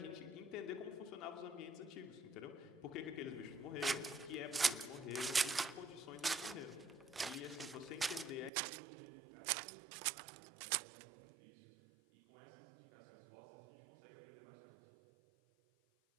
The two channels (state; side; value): drops out; left; at 8.5 s